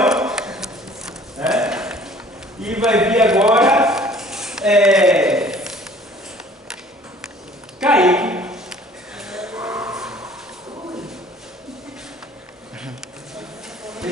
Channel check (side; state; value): both; normal; correlation 0.52